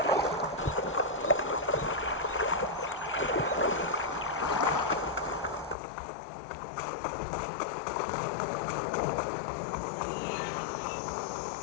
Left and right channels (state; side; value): drops out; right; at 5.8 s